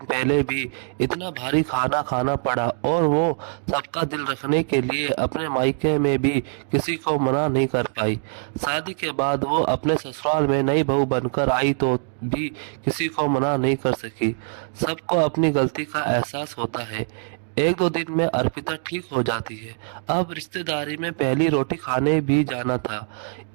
पहले भी इतना भारी खाना खाना पड़ा और वो सबका दिल रखने के लिए अपने मायके में भी किसी को मना नहीं कर पाई। शादी के बाद वो अपने ससुराल में नई बहू बनकर आई तो भी किसी को मना नहीं कर सकी। सबको अपनी गलती का एहसास होता है। 1-2 दिन में अर्पिता ठीक हो जाती है। अब रिश्तेदारी में पहली रोटी खाने भी जाना था।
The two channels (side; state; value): left; silent; digital silence